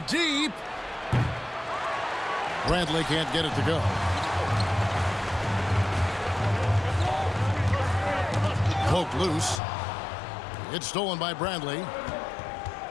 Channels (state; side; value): drops out; right; at 9.6 s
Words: deep. Bradley can't get it to go. Poked loose. It's stolen by Bradley.